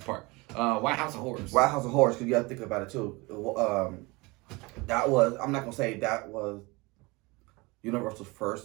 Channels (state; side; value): quieter; left; 24.8 dB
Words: Park. Why House of Horrors? Why House of Horrors? Because you got to think about it too. I'm not gonna say that was Universal's